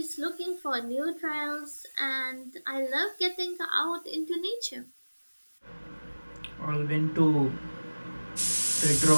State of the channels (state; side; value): inverted; both; correlation -1.00